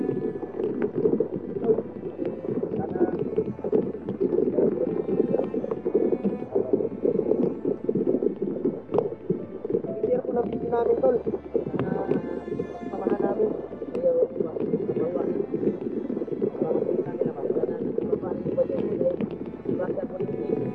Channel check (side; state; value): both; identical; correlation 1.00